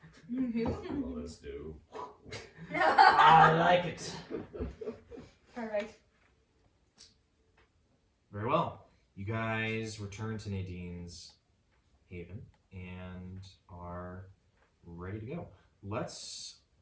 Well, let's do. I like it. Alright. Very well. You guys return to Nadine's Haven and are ready to go. Let's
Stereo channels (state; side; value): identical; both; correlation 1.00